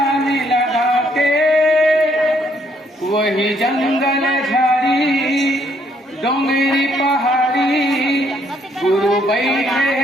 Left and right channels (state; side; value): normal; both; correlation 0.69